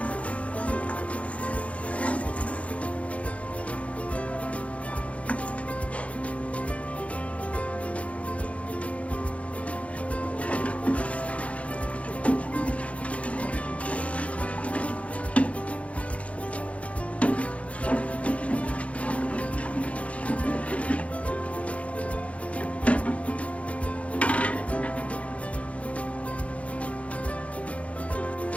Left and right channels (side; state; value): right; late; 0.064 ms